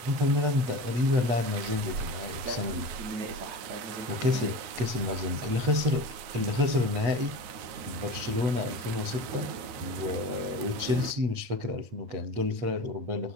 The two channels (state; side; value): late; left; 9.4 ms